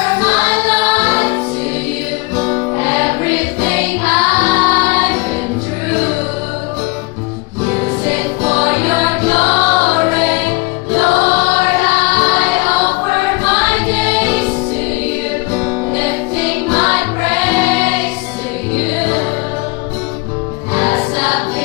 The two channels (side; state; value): right; quieter; 25.6 dB